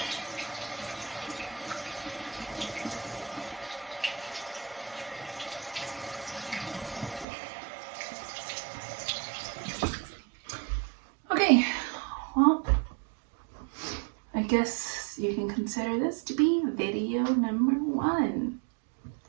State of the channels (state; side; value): drops out; left; at 7.2 s